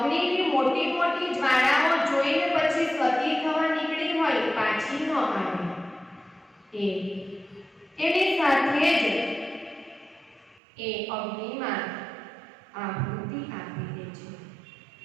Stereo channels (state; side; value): drops out; left; at 10.6 s